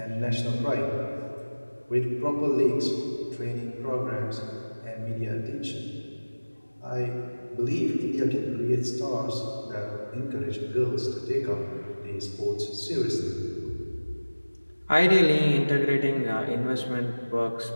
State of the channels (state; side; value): inverted; both; correlation -1.00